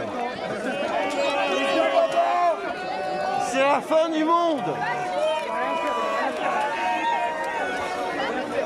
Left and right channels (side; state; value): both; identical; correlation 1.00